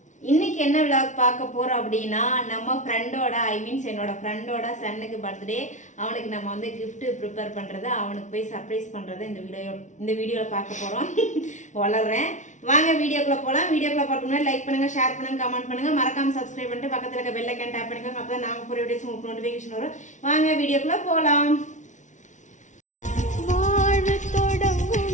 இன்னைக்கு என்ன விளாக் பார்க்க போறோம் அப்படின்னா நம்ம ஃப்ரெண்டோட என்னோட ஃப்ரெண்டோட சன்னுக்கு பர்த்டே. அவனுக்கு நம்ம வந்து gift ப்ரிப்பேர் பண்றது, அவனுக்கு போய் சர்ப்ரைஸ் பண்றது இந்த வீடியோல பார்க்க போறோம். வளர்றேன் வாங்க வீடியோக்குள்ள போலாம். வீடியோக்குள்ள பார்க்க முன்னாடி லைக் பண்ணுங்க, ஷேர் பண்ணுங்க, கமெண்ட் பண்ணுங்க, மறக்காம சப்ஸ்கிரைப் பண்ணிட்டு பக்கத்துல இருக்க பெல் ஐகான் டேப் பண்ணிக்கோங்க. அப்பதான் நாங்க போற வீடியோஸ் உங்களுக்கு நோட்டிஃபிகேஷன் வரும். வாங்க வீடியோக்குள்ள போலாம்.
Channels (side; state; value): right; late; 0.36 ms